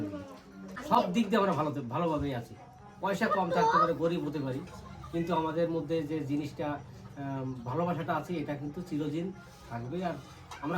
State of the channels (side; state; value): both; identical; correlation 1.00